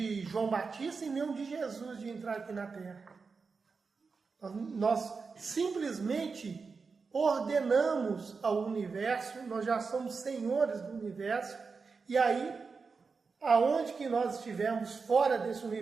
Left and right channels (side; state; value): left; quieter; 4.8 dB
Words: João Batista e nem o de Jesus de entrar aqui na Terra. Nós simplesmente ordenamos ao universo, nós já somos senhores do universo, e aí, aonde que nós estivermos fora desse